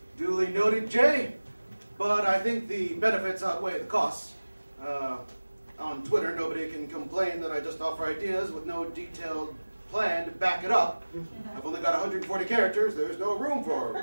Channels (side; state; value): both; inverted; correlation -1.00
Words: Duly noted, Jay. But I think the benefits outweigh the costs. On Twitter, nobody can complain that I just offer ideas with no detailed plan to back it up. I've only got 140 characters. There's no room for